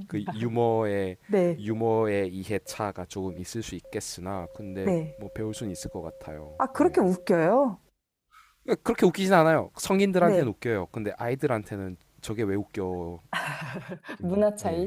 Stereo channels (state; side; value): identical; both; correlation 1.00